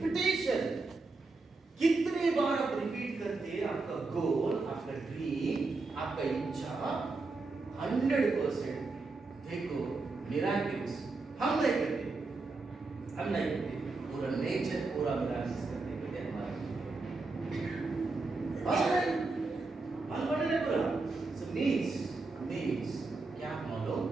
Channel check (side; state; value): left; quieter; 3.7 dB